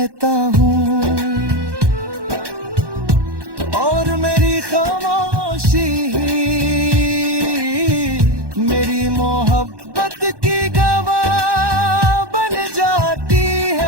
हूँ और मेरी खामोशी मेरी मोहब्बत की गवाह बन जाती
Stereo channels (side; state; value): left; late; 1.1 ms